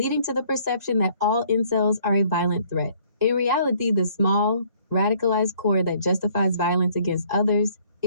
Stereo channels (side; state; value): both; inverted; correlation -0.61